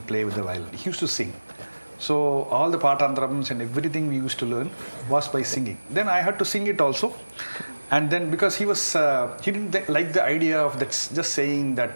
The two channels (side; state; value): both; inverted; correlation -1.00